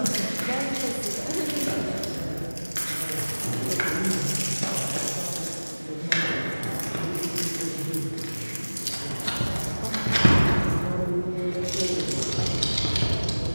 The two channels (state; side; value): inverted; both; correlation -1.00